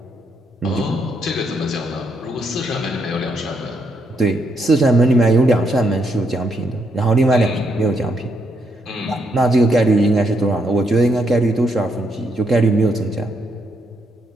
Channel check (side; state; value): both; normal; correlation 0.76